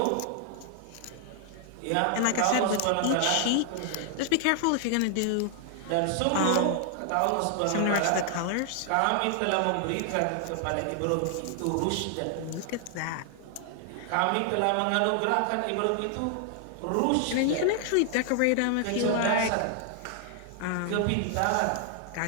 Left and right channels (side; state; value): both; different; correlation 0.00